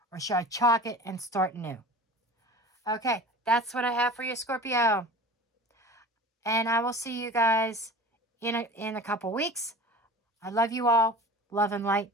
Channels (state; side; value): normal; both; correlation 0.38